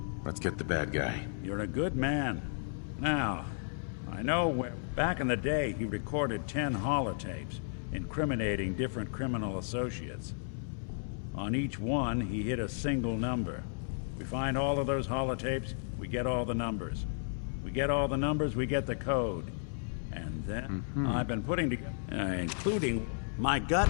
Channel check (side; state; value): right; silent; digital silence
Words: Let's get the bad guy. You're a good man. Now, I know back in the day he recorded 10 holotapes, incriminating different criminal associates. On each one, he hit a single number. We find all of those holotapes, we get all the numbers. We get all the numbers, we get the code. And then I've been putting together, including... My gut